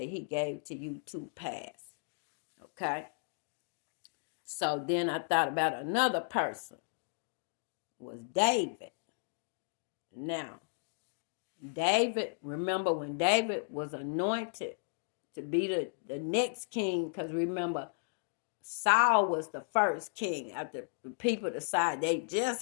he gave to you to pass. Okay? So then I thought about another person. It was David. Now, David, remember when David was anointed to be the next king, because remember, Saul was the first king. After the people decided they just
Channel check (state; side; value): silent; right; digital silence